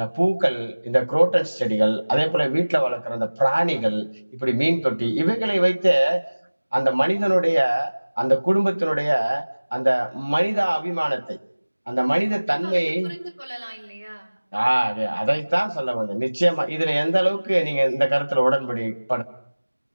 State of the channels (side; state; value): both; inverted; correlation -1.00